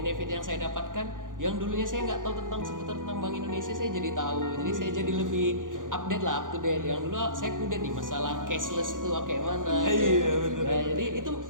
yang saya dapatkan, yang dulunya saya nggak tahu seputar tentang Bank Indonesia, saya jadi tahu. Jadi saya jadi lebih update lah, up to date. Yang dulu saya kudet nih masalah cashless itu kayak mana. Iya, bener. Nah, jadi itu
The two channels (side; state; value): left; late; 0.88 ms